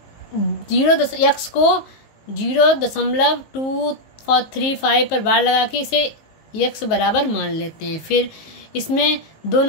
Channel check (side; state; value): right; late; 19 ms